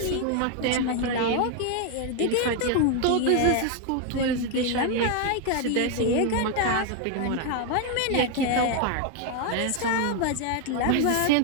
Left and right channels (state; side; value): different; both; correlation 0.01